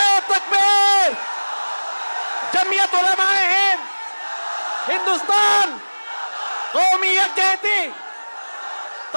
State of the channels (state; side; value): inverted; both; correlation -1.00